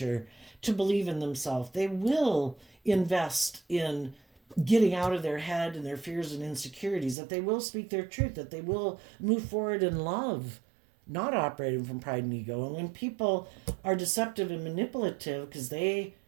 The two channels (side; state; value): left; drops out; at 7.2 s